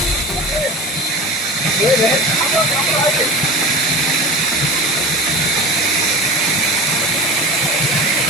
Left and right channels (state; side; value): normal; both; correlation 0.33